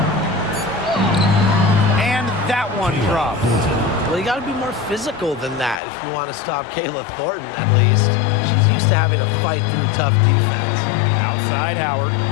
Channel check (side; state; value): right; drops out; at 5.8 s